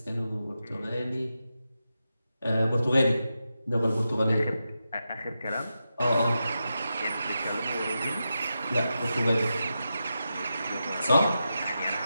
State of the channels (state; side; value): inverted; both; correlation -0.89